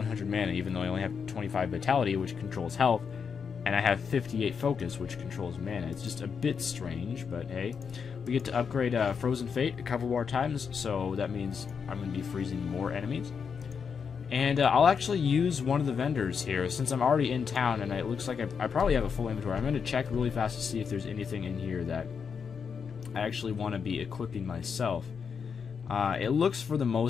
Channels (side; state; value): right; quieter; 6.3 dB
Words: mana, even though I only have 25 vitality, which controls health, and I have 58 focus, which controls mana. It's just a bit strange, but hey. We get to upgrade Frozen Fate a couple more times, so that means I'm going to be freezing more enemies. And I'll actually use one of the vendors here, since I'm already in town, and it looks like I probably have a full inventory. I'm going to check really fast to see if there's anything in here that I actually want to be equipping myself. It looks for the